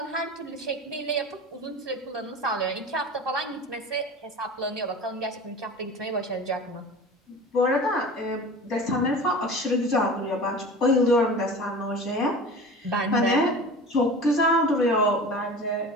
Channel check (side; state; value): both; normal; correlation 0.36